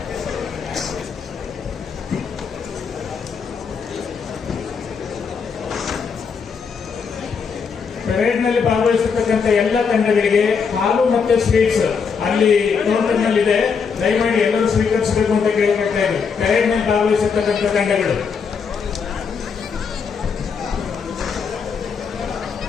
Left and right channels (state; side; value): quieter; right; 5.9 dB